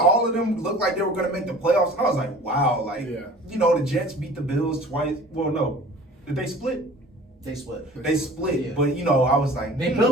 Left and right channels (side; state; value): both; normal; correlation 0.45